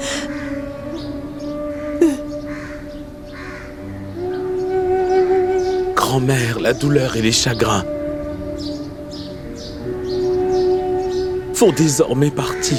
Grand-mère, la douleur et les chagrins font désormais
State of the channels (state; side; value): identical; both; correlation 1.00